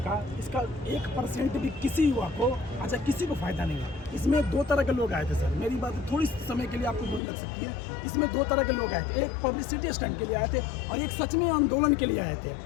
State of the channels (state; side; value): drops out; right; at 7.2 s